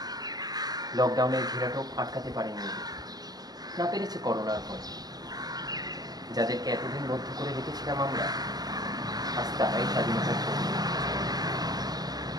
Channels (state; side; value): late; left; 0.19 ms